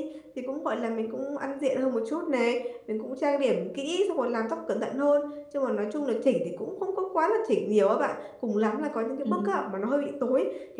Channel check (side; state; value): both; identical; correlation 1.00